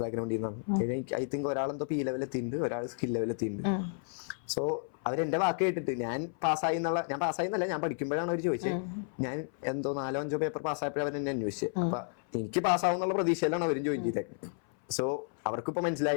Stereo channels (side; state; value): right; silent; 56 dB below the other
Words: ബാക്ക്ഗ്രൗണ്ടിൽ നിന്നാണ്. ഐ തിങ്ക് ഒരാളെന്തോ P ലെവൽ എത്തിയിട്ടുണ്ട്, ഒരാൾ സ്കിൽ ലെവൽ എത്തിയിട്ടുണ്ട്. സോ അവരെന്റെ വാക്ക് കേട്ടിട്ട് ഞാൻ പാസ്സായി എന്നല്ല, ഞാൻ പഠിക്കുമ്പോഴാണ് അവർ ചോദിച്ചത്. ഞാൻ എന്തോ 4-5 പേപ്പർ പാസ്സായപ്പോഴും അവർ എന്നെ അന്വേഷിച്ചത്. അപ്പൊ എനിക്ക് പാസ്സാവും എന്നുള്ള പ്രതീക്ഷയിലാണ് അവരും ജോയിൻ ചെയ്തേക്കുന്നത്. സോ അവർക്കിപ്പോ